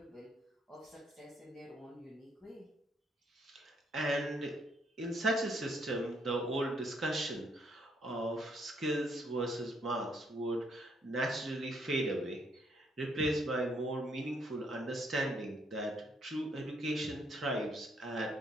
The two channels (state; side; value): normal; both; correlation 0.70